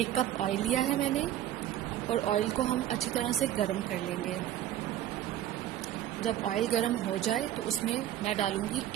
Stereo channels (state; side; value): quieter; left; 12.1 dB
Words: कप ऑयल लिया है मैंने, और ऑयल को हम अच्छी तरह से गर्म कर लेंगे। जब ऑयल गर्म हो जाए तो उसमें मैं डालूंगी